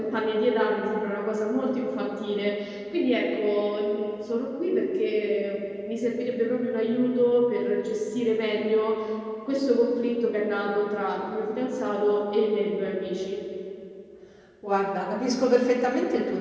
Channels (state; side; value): identical; both; correlation 1.00